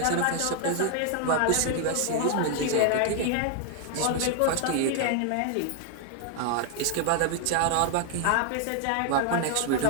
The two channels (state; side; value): different; both; correlation 0.00